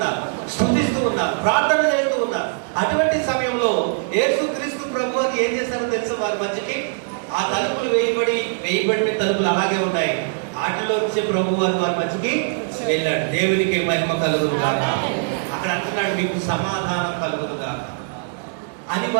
స్తుతిస్తూ ఉన్నారు, ప్రార్థన చేస్తూ ఉన్నారు. అటువంటి సమయంలో యేసుక్రీస్తు ప్రభు అని ఏం చేశారో తెలుసా? వారి మధ్యకి ఆ తలుపులు వేయబడిన తలుపులు అలాగే ఉన్నాయి. వాటిలో వచ్చే ప్రభు వారి మధ్యకి వెళ్ళాడు. దేవునికి మహిమ కలుగునుగాక. అక్కడ అంటున్నాడు మీకు సమాధానం కలుగునుగాక అని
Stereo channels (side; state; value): left; silent; digital silence